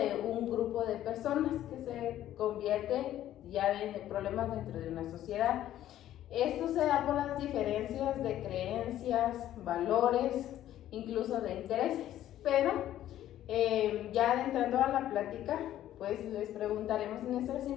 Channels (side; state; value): right; quieter; 12.5 dB